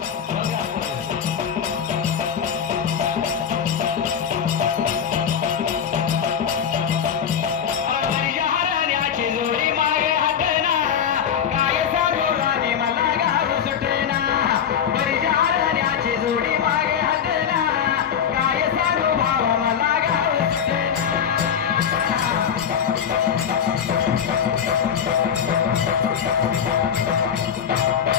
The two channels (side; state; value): right; quieter; 8.1 dB